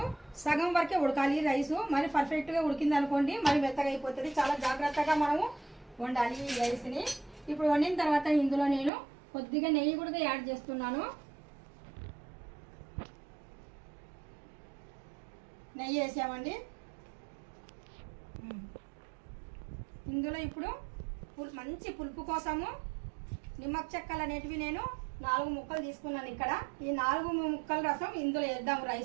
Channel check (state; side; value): drops out; left; at 8.9 s